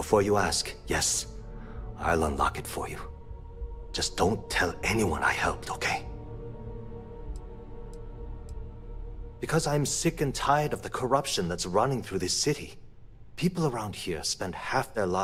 you ask, yes, I'll unlock it for you. Just don't tell anyone I helped, okay? Because I'm sick and tired of the corruption that's running through this city. People around here spend half their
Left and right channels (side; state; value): both; identical; correlation 1.00